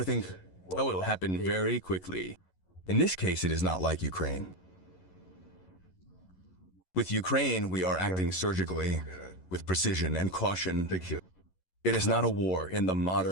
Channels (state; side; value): late; right; 11 ms